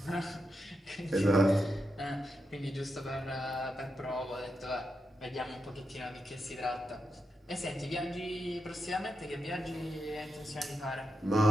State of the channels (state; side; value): normal; both; correlation 0.86